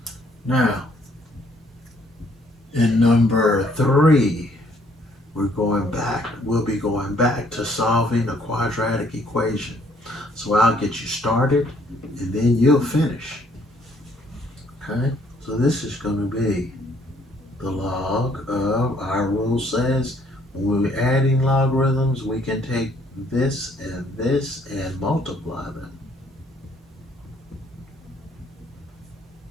Now, in number 3, we'll be going back to solving a quadratic equation. So I'll get you started and then you'll finish. Okay, so this is going to be the log of, our rule says, when we're adding logarithms, we can take this and multiply them.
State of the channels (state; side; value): normal; both; correlation 0.64